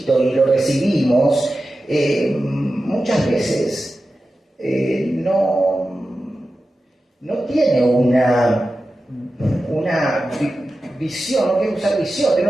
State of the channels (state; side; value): normal; both; correlation 0.93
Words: y lo recibimos, muchas veces no tiene una visión, no quiero usar visión,